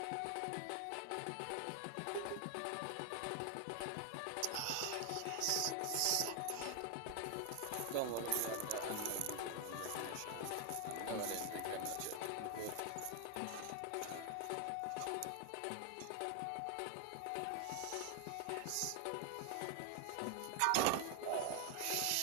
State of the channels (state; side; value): different; both; correlation 0.00